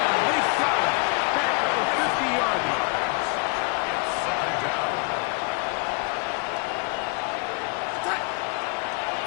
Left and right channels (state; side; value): quieter; right; 33.9 dB